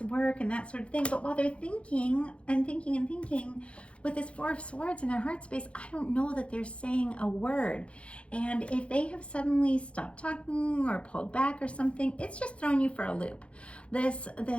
work and that sort of thing. But while they're thinking and thinking and thinking, with this Four of Swords in their heart space, I don't know that they're saying a word. And if they have suddenly stopped talking or pulled back or something, it's just throwing you for a loop. This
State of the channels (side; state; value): right; late; 0.060 ms